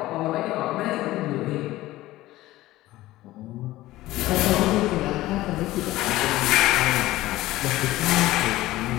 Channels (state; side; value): quieter; right; 16.8 dB